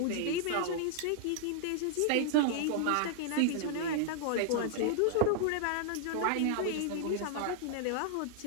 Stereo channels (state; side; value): different; both; correlation -0.01